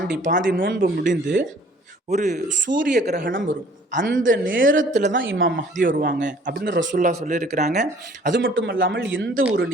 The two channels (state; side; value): normal; both; correlation 0.55